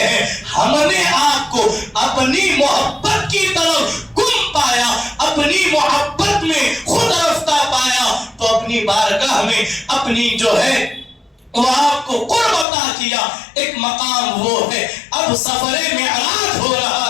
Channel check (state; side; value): drops out; right; at 12.7 s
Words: ہم نے آپ کو اپنی محبت کی طرف گم پایا، اپنی محبت میں خود رفتہ پایا تو اپنی بارگاہ میں اپنی جو ہے وہ آپ کو قرب عطا کیا، ایک مقام وہ ہے۔ اب سفر معراج ہو